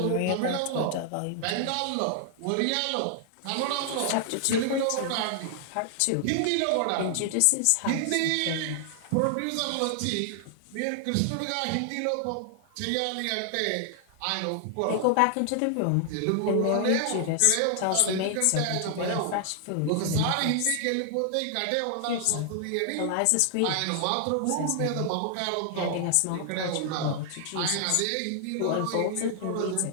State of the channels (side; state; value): both; different; correlation 0.00